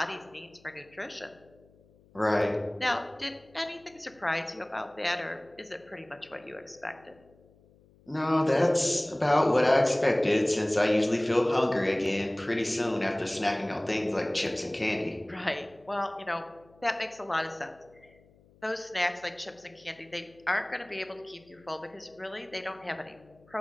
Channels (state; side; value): noise; left; hum, 29 dB below the sound